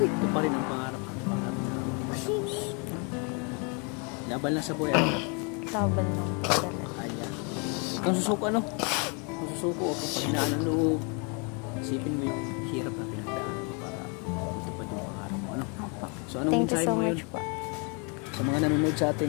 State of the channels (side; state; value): right; quieter; 35.0 dB